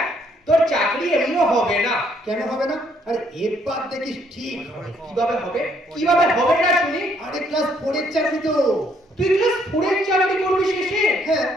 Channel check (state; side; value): normal; both; correlation 0.68